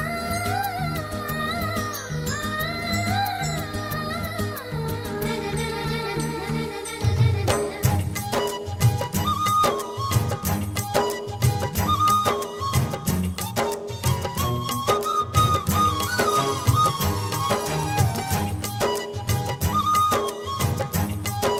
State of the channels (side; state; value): both; identical; correlation 1.00